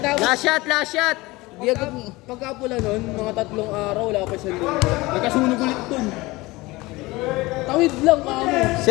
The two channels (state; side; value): quieter; right; 21.4 dB